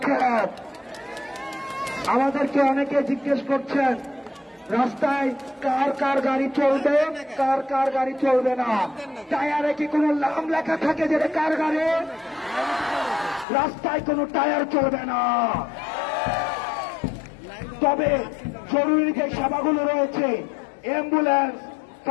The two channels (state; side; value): drops out; right; at 13.5 s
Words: আমাদেরকে অনেকে জিজ্ঞেস করছেন রাস্তায় কার কার গাড়ি চলবে, কার কার গাড়ি চলবে না। টায়ারে কি কোনো নাম লেখা থাকে যে কার গাড়ি? রাস্তায় কোনো টায়ার চলবে না। তবে জরুরি যে সেবাগুলো রয়েছে, অ্যাম্বুলেন্স,